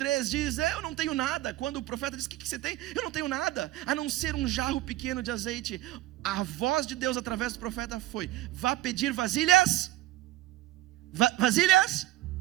diz, eu não tenho nada. Quando o profeta diz, o que você tem? Eu não tenho nada, a não ser um jarro pequeno de azeite. A voz de Deus através do profeta foi, vá pedir vasilhas, vasilhas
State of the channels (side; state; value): left; quieter; 16.1 dB